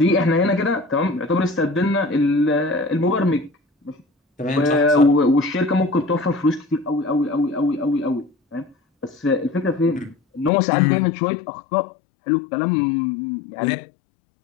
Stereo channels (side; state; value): right; drops out; at 10.5 s